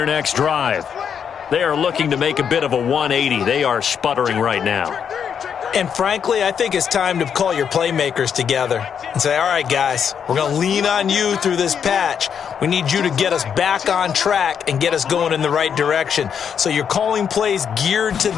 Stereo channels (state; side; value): quieter; right; 7.6 dB